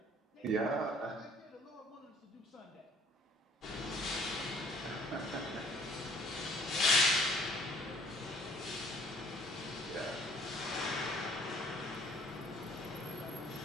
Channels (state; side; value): normal; both; correlation 0.56